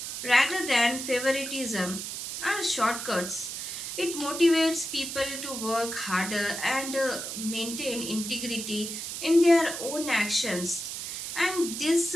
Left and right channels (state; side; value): noise; right; hiss, 6 dB below the sound